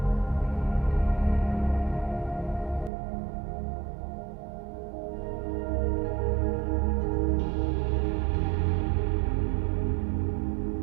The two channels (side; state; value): left; drops out; at 2.9 s